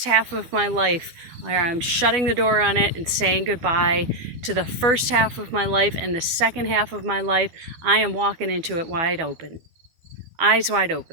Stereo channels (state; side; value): late; left; 12 ms